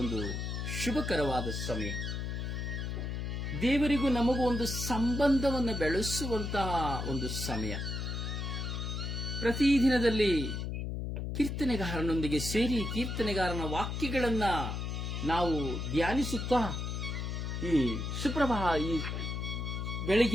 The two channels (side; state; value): left; noise; hum, 3 dB below the sound